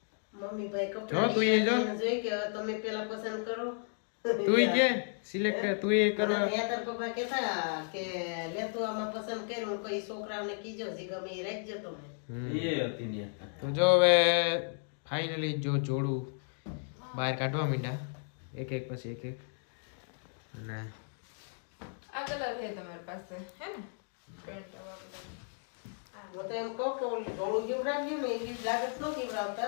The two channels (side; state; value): right; silent; 55 dB below the other